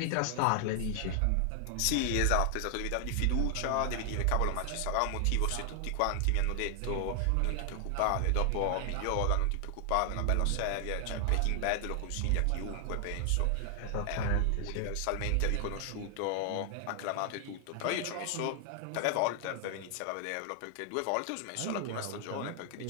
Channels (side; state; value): both; different; correlation 0.00